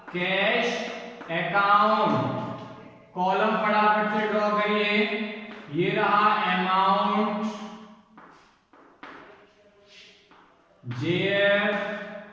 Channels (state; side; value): identical; both; correlation 1.00